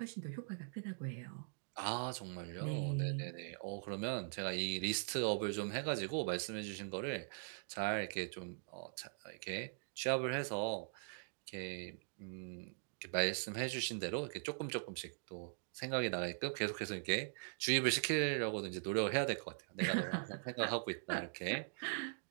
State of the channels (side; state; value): left; silent; digital silence